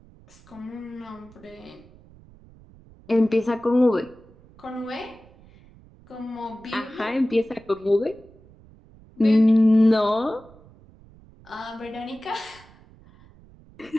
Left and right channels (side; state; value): right; noise; rumble, 25 dB below the sound